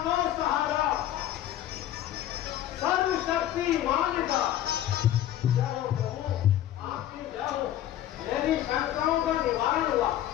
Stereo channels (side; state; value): right; quieter; 12.3 dB